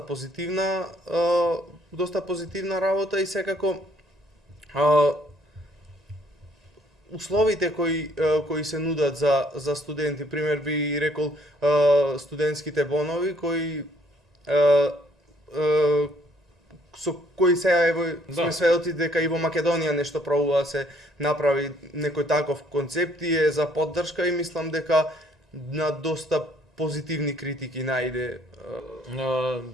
позитивна работа и секако условите кои се нудат за студенти, пример би рекол студентските бонови кои со кои сега сме сведоци дека и во Македонија нешто пробува да се направи некој таков концепт и е за поддршка и мислам дека на доста позитивни критики најде.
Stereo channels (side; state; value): both; normal; correlation 0.64